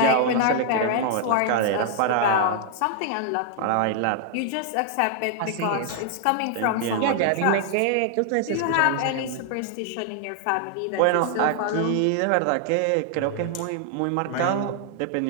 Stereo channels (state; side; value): different; both; correlation 0.00